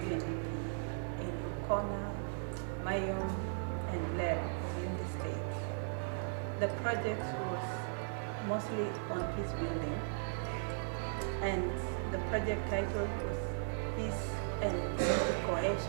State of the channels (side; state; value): left; silent; 53 dB below the other